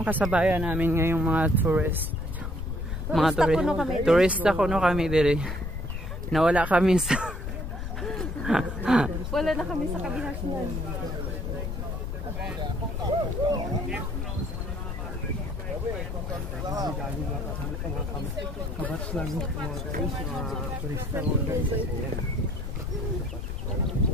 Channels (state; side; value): noise; left; rumble, 4 dB below the sound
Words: kasabayan namin ngayong mga tourist. Turista kuno kami dire. Nawala kami sa wala na kami sa kabihasyan. Kabats lang mga guys, mga turista mo guys.